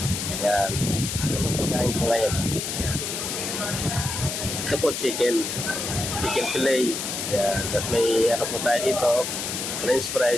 Yan, ito po pagkain ko ngayon. Ito po, chicken fillet. Yan, tapos may ano po tayo dito, french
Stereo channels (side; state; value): left; noise; hiss, 4 dB below the sound